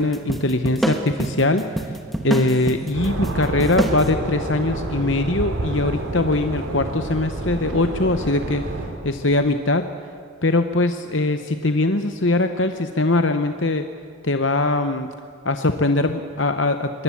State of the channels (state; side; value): normal; both; correlation 0.29